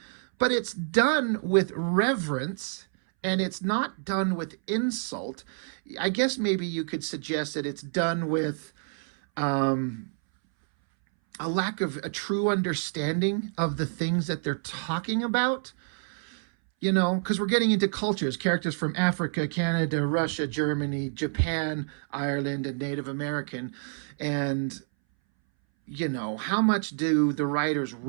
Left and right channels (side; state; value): left; silent; 59 dB below the other